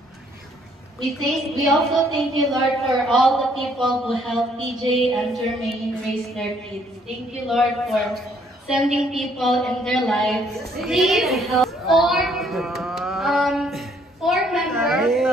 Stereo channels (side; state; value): both; normal; correlation 0.65